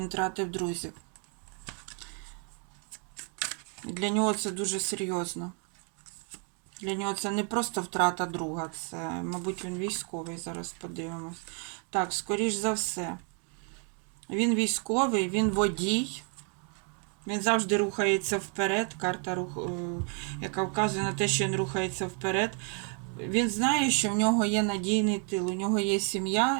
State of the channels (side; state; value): left; quieter; 39.3 dB